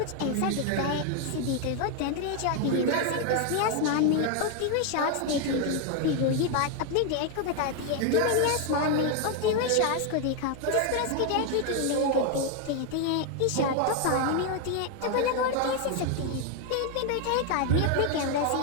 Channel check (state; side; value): different; both; correlation 0.01